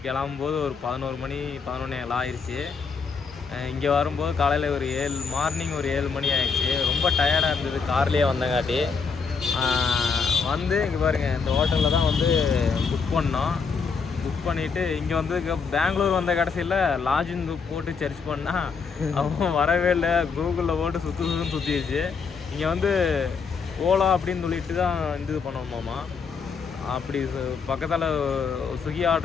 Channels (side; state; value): right; quieter; 5.4 dB